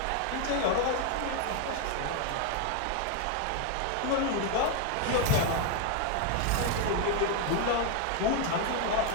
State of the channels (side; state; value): both; different; correlation 0.01